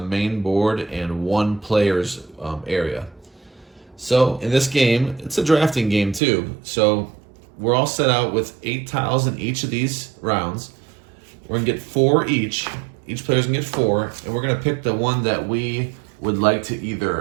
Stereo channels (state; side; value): drops out; left; at 6.2 s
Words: board and one player's area. So in this game, it's a drafting game too. So we're all set out with 8 tiles in each of these rounds. We're going to get 4 each. Each player's going to get 4, and we're going to pick the one that we would like to